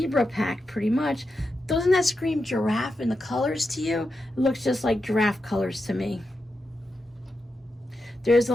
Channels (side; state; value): both; normal; correlation 0.88